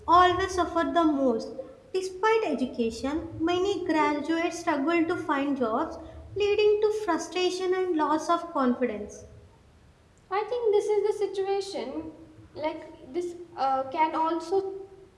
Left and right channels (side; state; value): both; identical; correlation 1.00